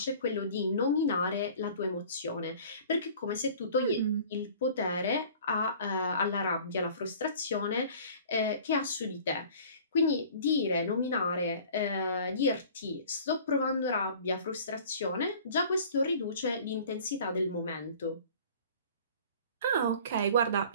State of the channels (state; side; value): inverted; both; correlation -0.47